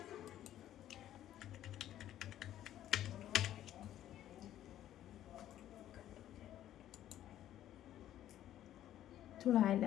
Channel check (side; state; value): right; quieter; 12.2 dB